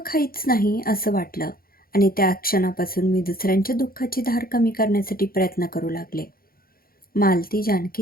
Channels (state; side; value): late; right; 0.43 ms